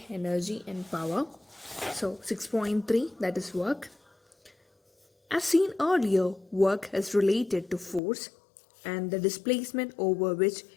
energy, and power. So, 6.3, that is work. As seen earlier, work is related to force and the displacement over which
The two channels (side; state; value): right; drops out; at 8.0 s